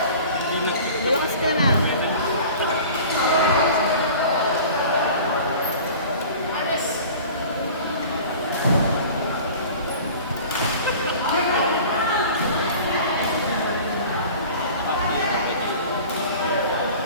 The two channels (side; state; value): both; inverted; correlation -0.42